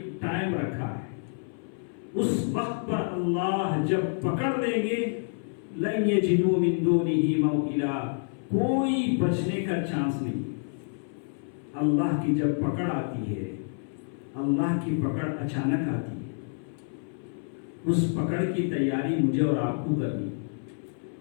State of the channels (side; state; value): right; silent; 57 dB below the other